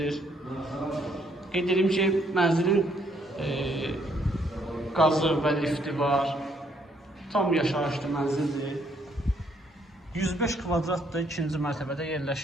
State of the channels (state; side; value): normal; both; correlation 0.69